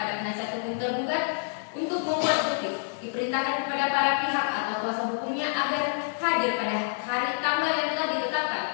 penasihat hukum tergugat untuk membuat bukti. Diperintahkan kepada para pihak atau kuasa hukumnya agar hadir pada hari tanggal yang telah ditetapkan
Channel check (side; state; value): right; silent; digital silence